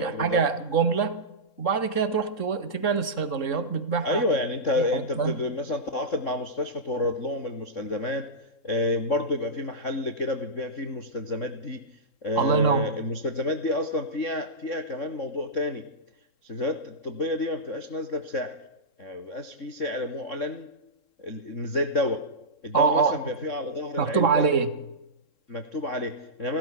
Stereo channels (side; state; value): right; late; 3.7 ms